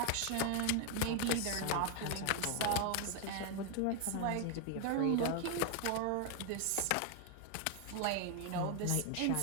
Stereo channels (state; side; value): different; both; correlation 0.00